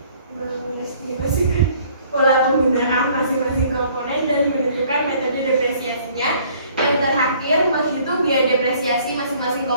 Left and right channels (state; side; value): inverted; both; correlation -0.58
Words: pola penggunaan masing-masing komponen dan menentukan metode depresiasinya. Yang terakhir, menghitung biaya depresiasi masing-masing